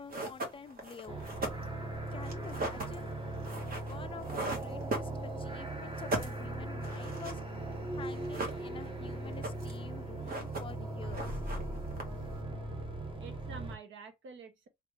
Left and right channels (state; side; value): normal; both; correlation 0.48